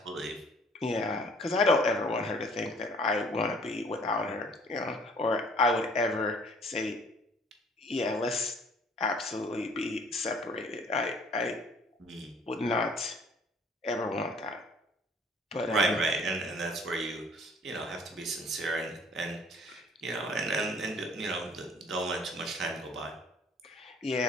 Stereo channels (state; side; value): normal; both; correlation 0.55